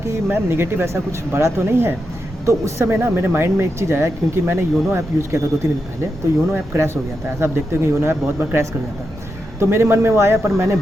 मैम निगेटिव ऐसा कुछ बड़ा तो नहीं है। तो उस समय ना मेरे माइंड में एक चीज़ आया, क्योंकि मैंने योनो ऐप यूज़ किया था 2-3 दिन पहले, तो योनो ऐप क्रैश हो गया था। ऐसा आप देखते हो कि योनो ऐप बहुत बार क्रैश कर जाता है। तो मेरे मन में वो आया, पर मैंने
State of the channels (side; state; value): both; normal; correlation 0.86